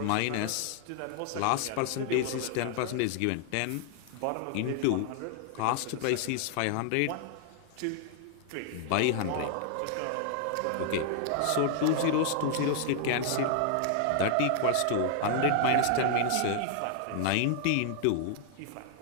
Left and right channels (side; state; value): both; different; correlation 0.00